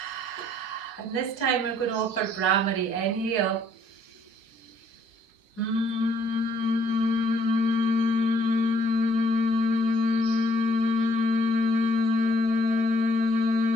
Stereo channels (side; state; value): right; late; 4.8 ms